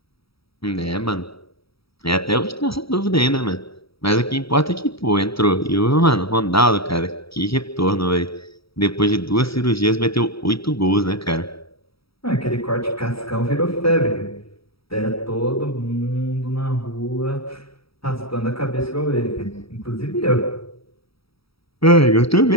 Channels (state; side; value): late; right; 0.76 ms